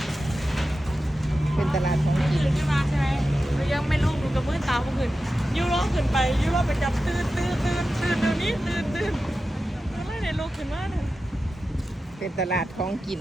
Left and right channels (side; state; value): both; normal; correlation 0.92